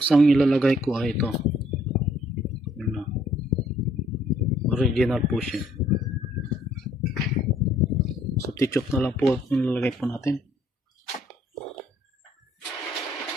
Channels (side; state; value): both; normal; correlation 0.64